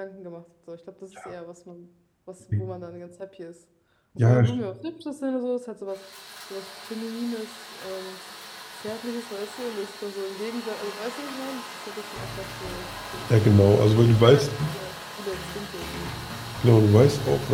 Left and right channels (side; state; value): both; identical; correlation 1.00